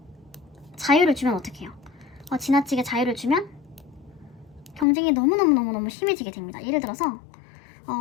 자유를 주면 어떡해요? 지나치게 자유를 주면 경쟁이 너무너무 심해지게 됩니다. 예를 들어서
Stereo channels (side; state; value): right; drops out; at 4.9 s